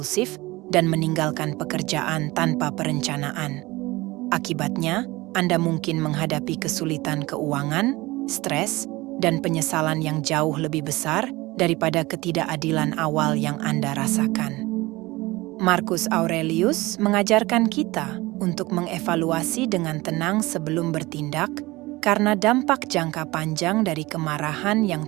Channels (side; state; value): left; quieter; 20.7 dB